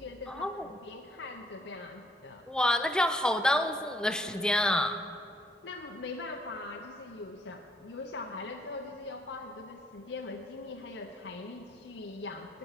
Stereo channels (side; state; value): both; normal; correlation 0.68